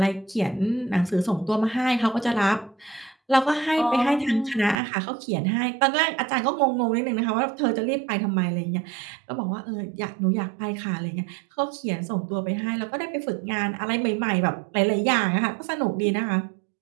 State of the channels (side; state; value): left; drops out; at 4.8 s